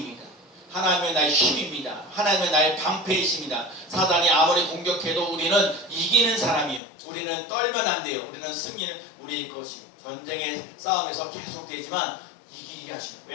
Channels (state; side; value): drops out; right; at 6.8 s